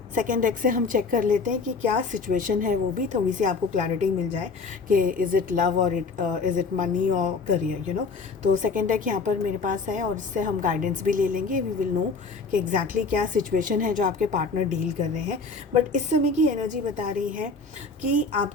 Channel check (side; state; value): right; quieter; 4.3 dB